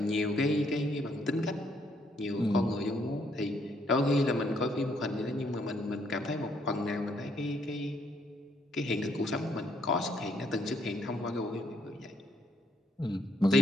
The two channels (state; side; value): normal; both; correlation 0.70